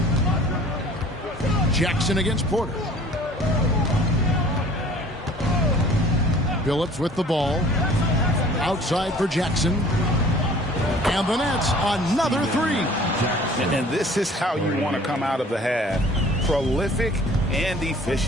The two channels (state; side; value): normal; both; correlation 0.50